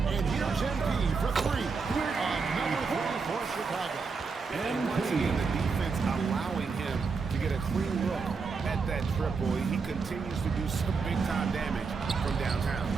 And here's MP for three. Number 3 for Chicago. And once again, the defense allowing him to get a clean look at that triple. He continues to do some big-time damage from downtown.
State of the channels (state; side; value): quieter; left; 4.9 dB